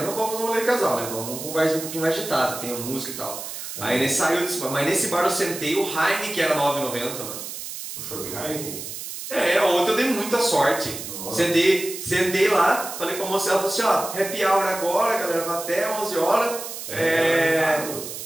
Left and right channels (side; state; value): right; noise; hiss, 9 dB below the sound